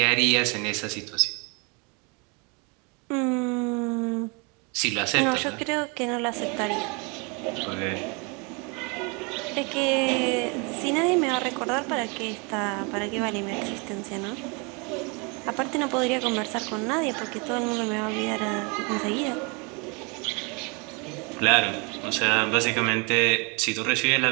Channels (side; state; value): left; quieter; 31.4 dB